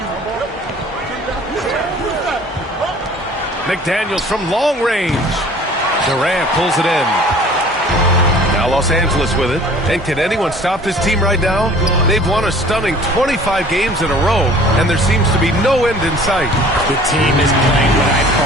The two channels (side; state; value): both; normal; correlation 0.49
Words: McDaniels from long range. Durant pulls it in. Now Los Angeles with it. And can anyone stop this team right now? They've won a stunning 25 games in a row, and there seems to be no end in sight. The team is playing what I